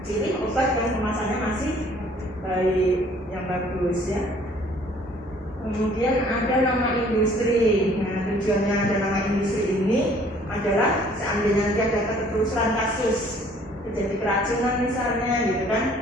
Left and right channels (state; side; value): normal; both; correlation 0.57